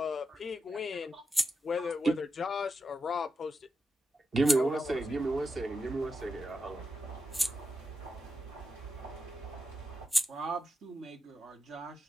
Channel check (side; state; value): both; normal; correlation 0.87